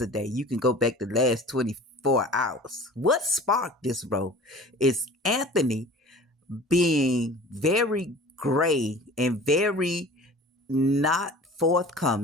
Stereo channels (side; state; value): both; normal; correlation 0.43